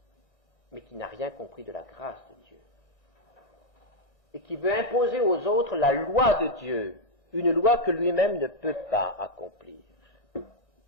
mais qui n'a rien compris de la grâce de Dieu, et qui veut imposer aux autres la loi de Dieu, une loi que lui-même ne peut pas accomplir.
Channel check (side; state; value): right; late; 1.6 ms